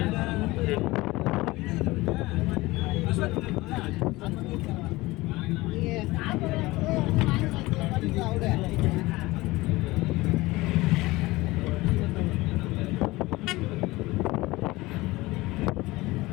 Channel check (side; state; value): right; quieter; 20.3 dB